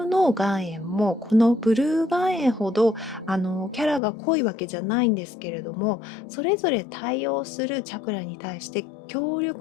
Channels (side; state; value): right; drops out; at 4.0 s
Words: の岩塩もこのブルー岩塩ほどキャラが濃いわけじゃないんですけれども、それぞれ対応するチャクラに対して強